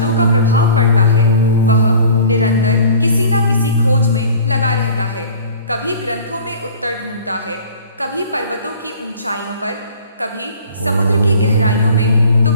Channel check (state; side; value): inverted; both; correlation -0.46